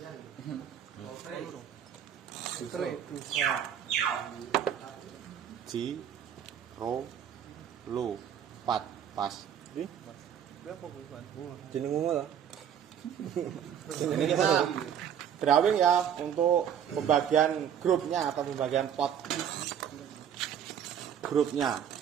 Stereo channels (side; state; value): left; quieter; 9.0 dB